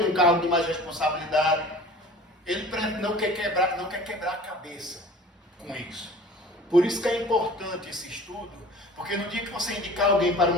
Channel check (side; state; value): both; normal; correlation 0.44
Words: num cargo de mais responsabilidade. Ele não quer quebrar a cabeça. com isso. Por isso que é importante esse estudo, porque no dia que você indicar alguém para